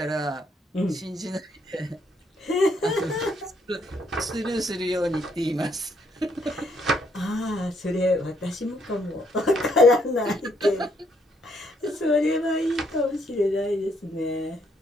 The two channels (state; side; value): normal; both; correlation 0.71